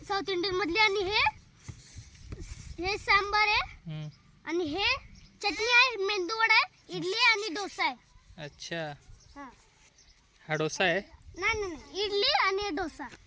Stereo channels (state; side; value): identical; both; correlation 1.00